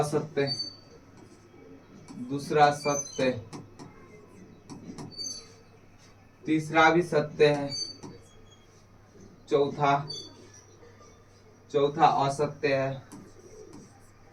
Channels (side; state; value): both; identical; correlation 1.00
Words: दूसरा सत्य, तीसरा भी सत्य है, चौथा, चौथा असत्य है,